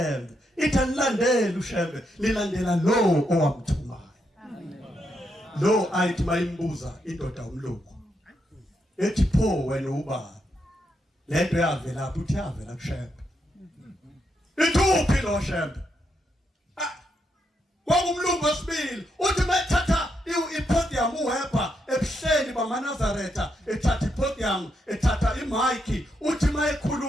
ithi anilandela uShembe nilandela lo owamthumayo lo ayithi mayimbuza indoda umlungu ethi pho wena ubaba lento yavela lapho uthi yavela kuShembe ithuphi lo Shembe kwakumlungu wesibili uthi mathatha ipodium uHepa ebuhleni bamaNazaretha ethatha ipodium ethatha imic uthi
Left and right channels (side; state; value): both; normal; correlation 0.80